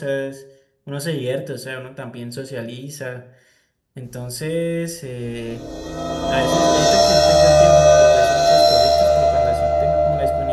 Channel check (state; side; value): identical; both; correlation 1.00